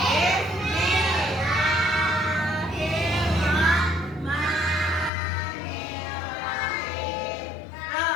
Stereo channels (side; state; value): right; drops out; at 5.1 s